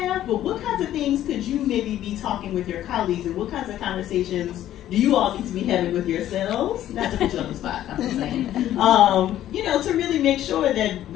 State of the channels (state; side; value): quieter; right; 12.5 dB